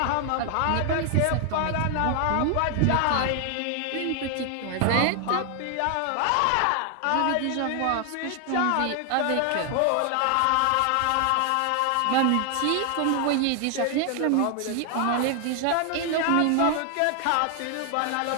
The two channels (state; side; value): different; both; correlation 0.00